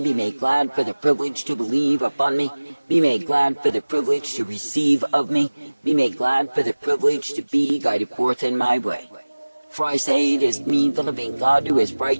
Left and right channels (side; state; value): both; inverted; correlation -1.00